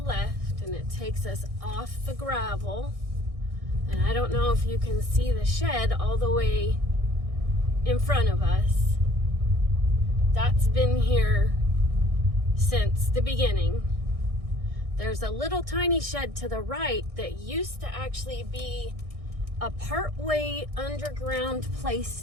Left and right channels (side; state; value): left; late; 1.6 ms